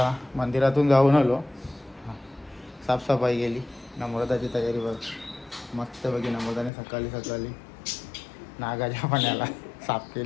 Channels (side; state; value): right; drops out; at 6.7 s